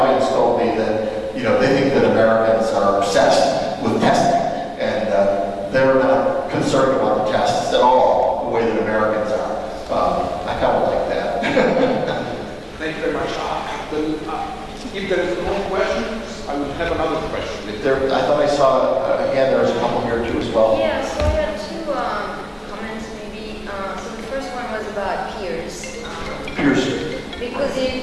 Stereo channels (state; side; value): identical; both; correlation 1.00